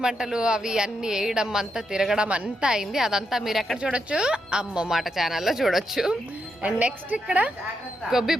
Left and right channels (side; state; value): both; normal; correlation 0.82